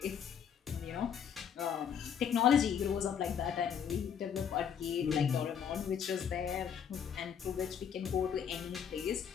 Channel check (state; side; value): quieter; right; 8.0 dB